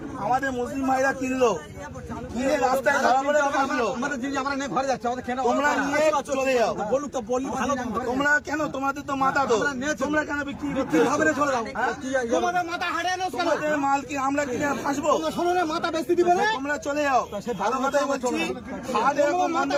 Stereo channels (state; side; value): identical; both; correlation 1.00